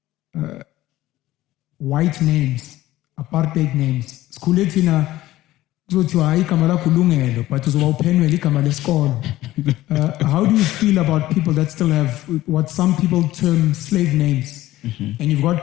white names, apartheid names. Skuletina kuzothiwa igama lakho ulungelo, but uzoba uphenwele igama lesikolo. How do you feel about people that still have what some people term slave names? And you've got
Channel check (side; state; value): right; quieter; 15.8 dB